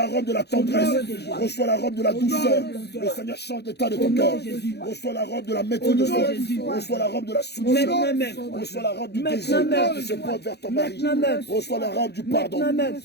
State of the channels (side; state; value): right; late; 0.48 ms